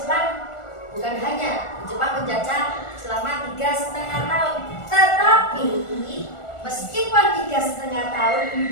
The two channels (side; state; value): right; late; 1.4 ms